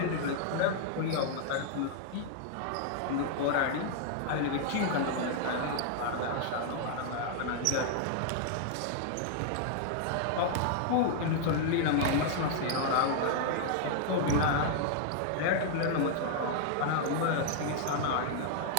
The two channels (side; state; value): both; different; correlation -0.01